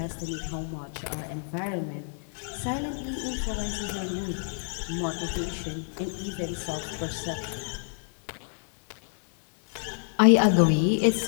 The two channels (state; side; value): silent; right; digital silence